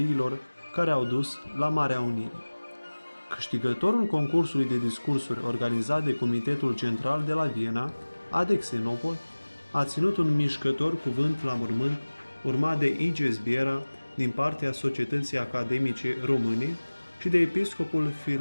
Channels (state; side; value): inverted; both; correlation -1.00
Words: care au dus la Marea Unire. Câștigătorul concursului de discursuri organizat de Comitetul Central de la Viena, Adexenopol, a ținut un mișcător cuvânt la mormânt, urmat de Iges Biera din partea Societății Academice Române și de episcopul